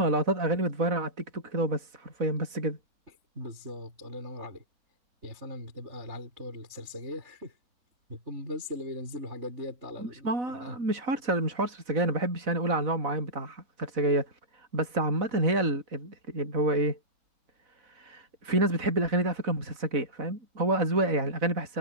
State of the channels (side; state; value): left; late; 4.0 ms